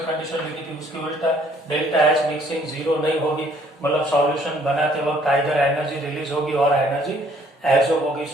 कंडीशन लिखी थी उसकी उल्टा, डेल्टा H मिक्सिंग 0 नहीं होगी, मतलब सॉल्यूशन बनाते वक्त आइदर एनर्जी रिलीज होगी और एनर्जी एब्सॉर्ब होगी।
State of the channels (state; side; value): normal; both; correlation 0.62